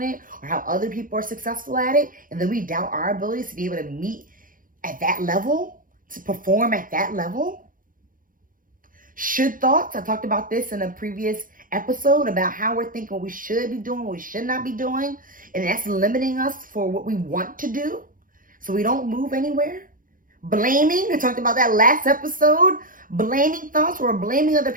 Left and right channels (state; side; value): late; left; 0.40 ms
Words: it or how other people are successful at it. And then we doubt our abilities to be able to meet at that level, to perform at that level. Should thoughts, I talked about this in a previous episode about how we're thinking what we should be doing, what we should not be doing. And that's limiting us for what we want to do. So we don't move anywhere. Blaming, I talked about that last episode. Blaming thoughts, we're blaming other